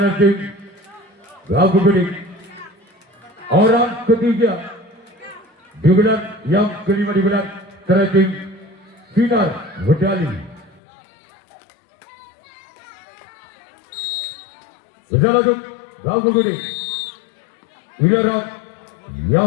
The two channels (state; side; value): drops out; right; at 10.8 s